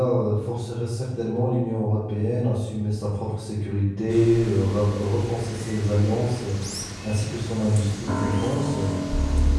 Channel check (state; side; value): identical; both; correlation 1.00